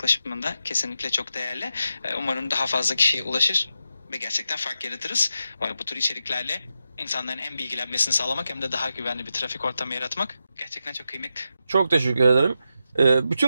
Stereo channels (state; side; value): inverted; both; correlation -0.87